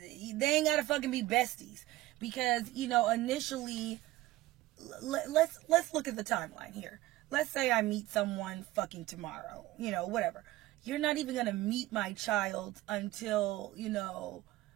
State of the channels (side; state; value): left; quieter; 17.0 dB